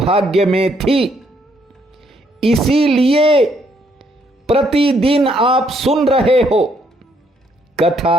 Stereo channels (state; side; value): normal; both; correlation 0.71